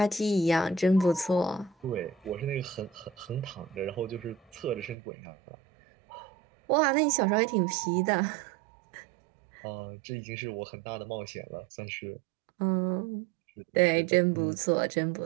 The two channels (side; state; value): left; drops out; at 5.0 s